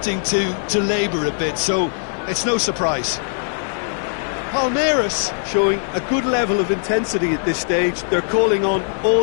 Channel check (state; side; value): silent; right; digital silence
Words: to labour a bit, so it's no surprise. Palmeiras showing a good level of intensity at this stage. They're calling on all